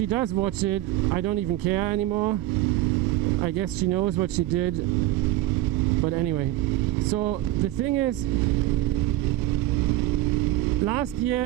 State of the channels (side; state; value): left; quieter; 15.3 dB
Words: does watch it, I don't even care anymore. I guess she knows what she did. But anyway, so the thing is, last year